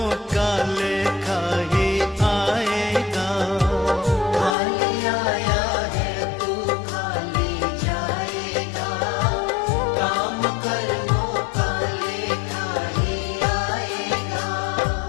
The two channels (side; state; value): right; drops out; at 4.5 s